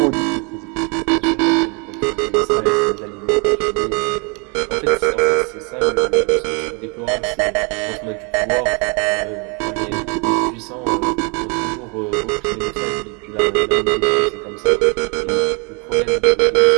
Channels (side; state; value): left; quieter; 33.1 dB